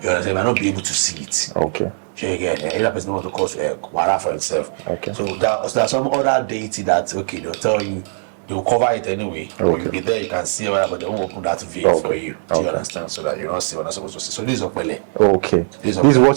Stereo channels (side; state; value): left; silent; 66 dB below the other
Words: You understand? You might not be able to see it. Okay. So again, either person wants to cause a wara for itself. Okay. So there's some other deity that they'll tell you, they'll cover it anyway, or you'll be there, you can see it, but they won't open that veil for you. Do you understand? So that you don't see what I'm supposed to see. So this is Okpele. Okay. This is